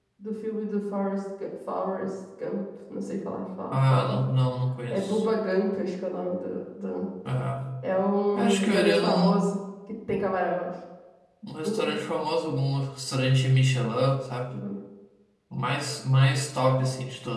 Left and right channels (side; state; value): both; identical; correlation 1.00